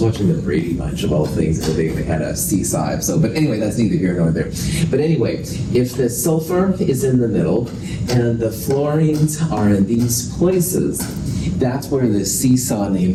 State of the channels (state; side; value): identical; both; correlation 1.00